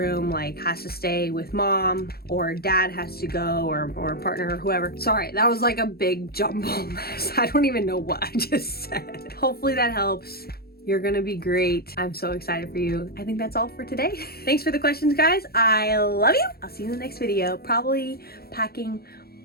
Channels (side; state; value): right; late; 0.45 ms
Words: like has to stay with mom, or dad has to go, or partner or whoever. Sorry, that was like a big jumble mess. I don't even know what I just said. Hopefully that helps. You're gonna be great. I'm so excited for you. I think that's all for today. Thanks for the questions, guys. I love you. I'll see you in the next video. Probably packing